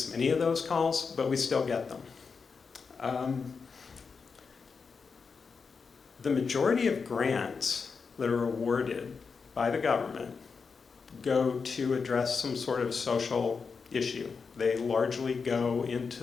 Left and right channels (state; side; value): quieter; right; 5.3 dB